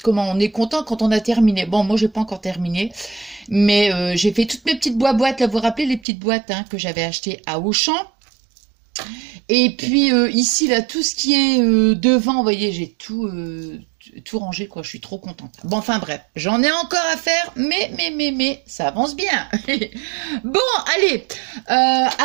content quand on a terminé. Bon, moi, j'ai pas encore terminé, mais j'ai fait toutes mes petites boîtes. Là, vous vous rappelez les petites boîtes que j'avais achetées à Auchan. Et puis ici, là, tout ce qui est devant, vous voyez, j'ai tout rangé, quoi. Je suis trop contente. Bon, enfin bref, j'en ai encore à faire, mais, ça avance bien. Bon, allez,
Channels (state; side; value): drops out; left; at 6.1 s